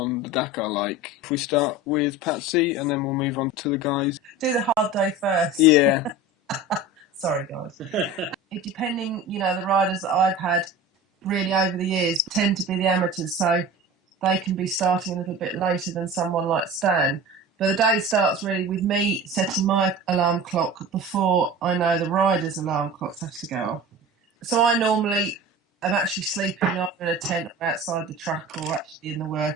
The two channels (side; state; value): both; normal; correlation 0.35